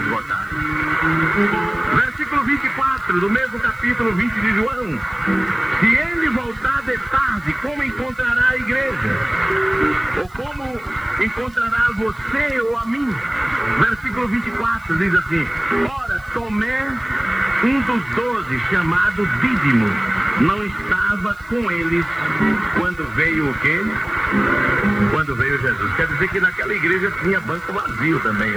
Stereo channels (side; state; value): right; noise; hiss, 30 dB below the sound